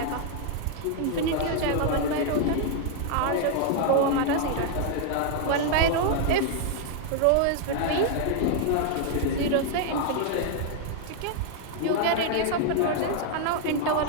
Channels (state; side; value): different; both; correlation 0.00